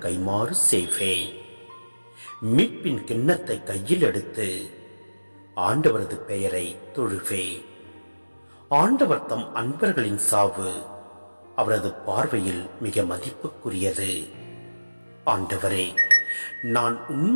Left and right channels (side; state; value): both; inverted; correlation -1.00